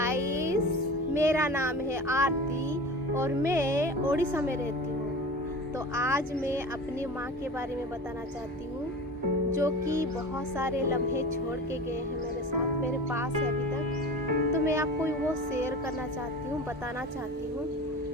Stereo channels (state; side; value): normal; both; correlation 0.34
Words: मेरा नाम है आरती और मैं ओडिशा में रहती हूँ। तो आज मैं अपनी माँ के बारे में बताना चाहती हूँ, जो कि बहुत सारे लम्हे छोड़ के गए हैं मेरे साथ, मेरे पास है अभी तक। तो मैं आपको वो शेयर करना चाहती हूँ, बताना चाहती हूँ।